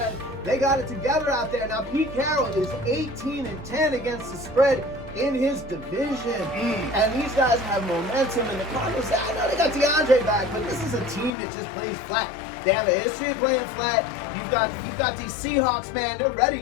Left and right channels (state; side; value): drops out; right; at 11.3 s